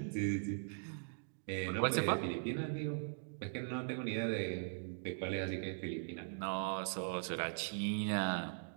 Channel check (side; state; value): left; silent; digital silence